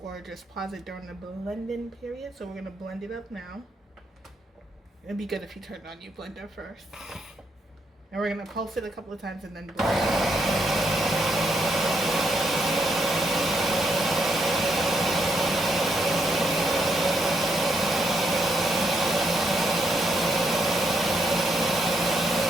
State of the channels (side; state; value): both; normal; correlation 0.77